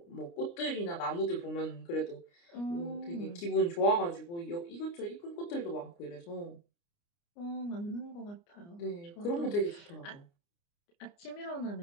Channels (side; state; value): right; late; 29 ms